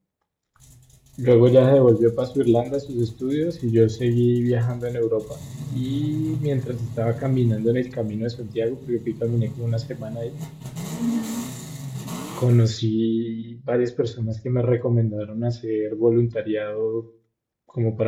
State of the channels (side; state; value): both; identical; correlation 1.00